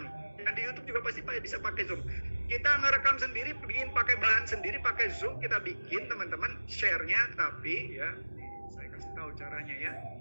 Dan di YouTube juga pasti bisa pakai Zoom. Kita ngerekam sendiri, bikin pakai bahan sendiri, pakai Zoom, kita bikin, teman-teman. Share-nya, tapi ya, saya kasih tahu caranya ya.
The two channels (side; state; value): both; inverted; correlation -1.00